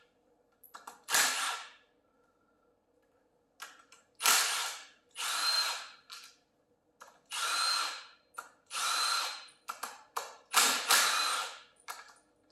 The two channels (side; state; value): both; identical; correlation 1.00